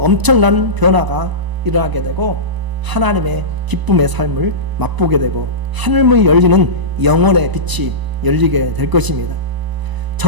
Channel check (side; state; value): left; late; 1.0 ms